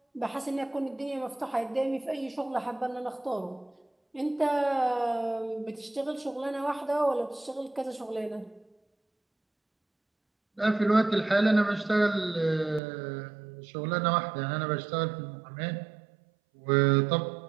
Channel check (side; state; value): left; drops out; at 12.8 s